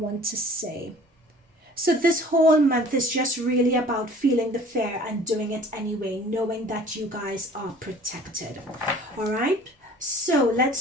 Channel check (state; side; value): normal; both; correlation 0.49